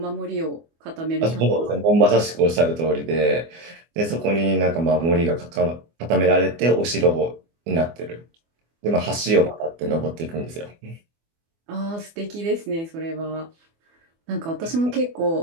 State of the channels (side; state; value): left; late; 24 ms